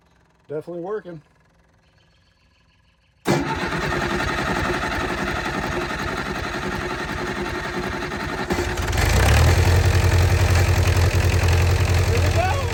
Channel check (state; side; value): identical; both; correlation 1.00